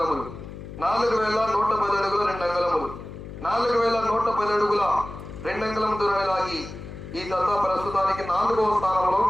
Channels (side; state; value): left; noise; hum, 12 dB below the sound